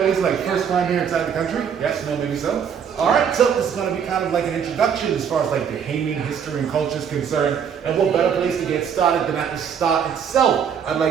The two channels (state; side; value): quieter; left; 7.6 dB